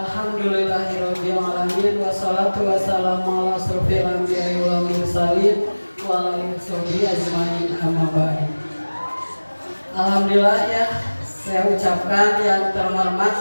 alamin wassalatu wassalamu ala asrofil anbiya'i wal mursalin wa ala alihi ajmain amma ba'du. Alhamdulillah ya, saya ucapkan yang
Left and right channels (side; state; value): both; inverted; correlation -1.00